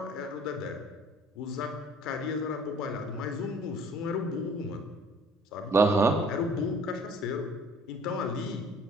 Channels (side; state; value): both; normal; correlation 0.52